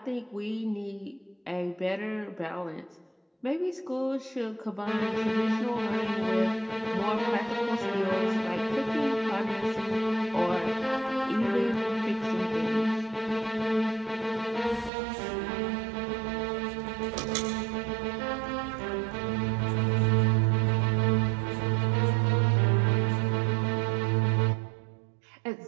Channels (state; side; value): drops out; left; at 14.9 s